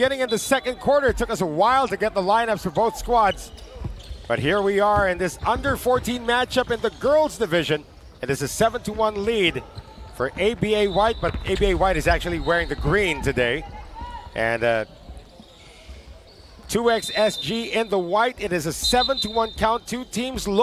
in the second quarter. It took us a while to get the lineups for both squads. But here we are in this under 14 matchup in the girls division. It is a 7-1 lead for ABA White, but ABA White is actually wearing the green today. And 2XSG in the white. It is a 7-1 count. Two teams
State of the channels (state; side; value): identical; both; correlation 1.00